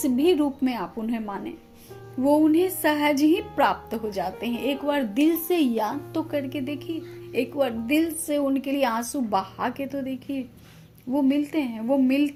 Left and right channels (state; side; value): identical; both; correlation 1.00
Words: भी रूप में आप उन्हें माने, वो उन्हें सहज ही प्राप्त हो जाते हैं। एक बार दिल से याद तो करके देखिए, एक बार दिल से उनके लिए आंसू बहा के तो देखिए, वो मिलते हैं, वो